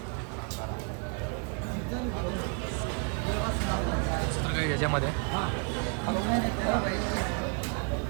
दुसरं काही याच्यामध्ये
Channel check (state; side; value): quieter; left; 38.9 dB